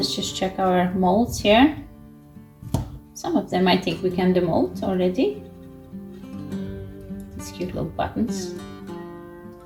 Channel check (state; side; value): identical; both; correlation 1.00